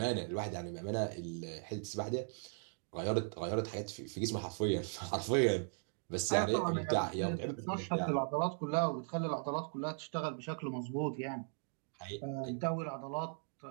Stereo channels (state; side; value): silent; left; 52 dB below the other